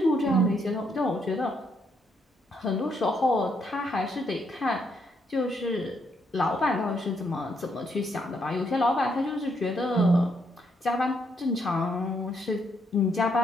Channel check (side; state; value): both; normal; correlation 0.75